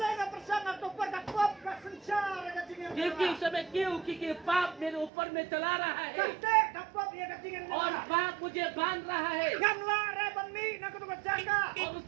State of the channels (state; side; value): drops out; left; at 5.1 s